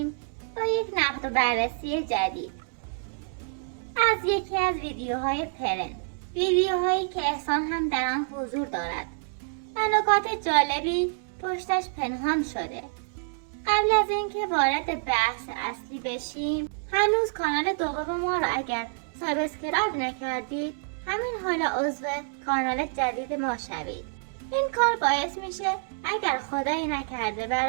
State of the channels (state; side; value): silent; left; digital silence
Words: با یک نقد و بررسی جدید از یکی از ویدیوهای پرن، ویدیوهایی که احسان هم در آن حضور دارد و نکات جالبی پشتش پنهان شده. قبل از اینکه وارد بحث اصلی بشیم، هنوز کانال دوم ما را اگر سابسکرایب نکردید همین حالا عضو کانال جدید ما شوید. این کار باعث میشه اگر خدایی نکرده